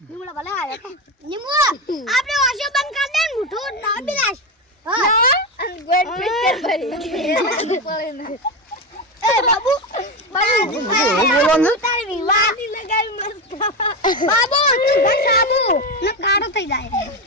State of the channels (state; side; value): normal; both; correlation 0.15